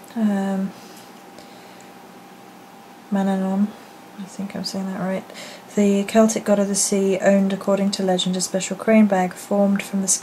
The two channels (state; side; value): identical; both; correlation 1.00